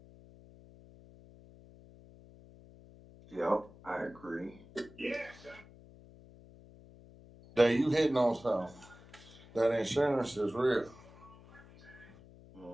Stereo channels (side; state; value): left; noise; hum, 22 dB below the sound